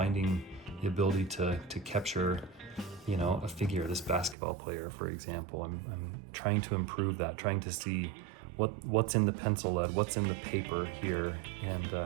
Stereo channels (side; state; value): left; drops out; at 4.4 s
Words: the ability to capture, you know, a figure, this basketball player, for example. I'm trying to improve that, trying to see what's in the pencil lead, what's in the paper here,